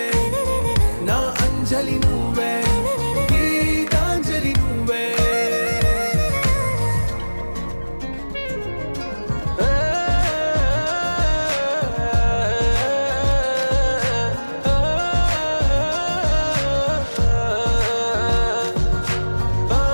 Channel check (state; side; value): inverted; both; correlation -1.00